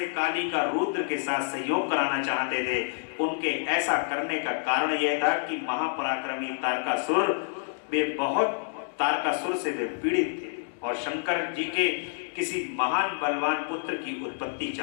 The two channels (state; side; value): silent; right; digital silence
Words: काली का रुद्र के साथ सहयोग कराना चाहते थे। उनके ऐसा करने का कारण यह था कि महापराक्रमी तारकासुर से वे पीड़ित थे और शंकर जी के किसी महान बलवान पुत्र की उत्पत्ति